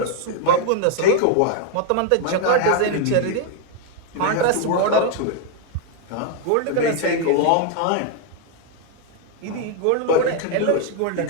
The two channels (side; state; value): both; different; correlation 0.01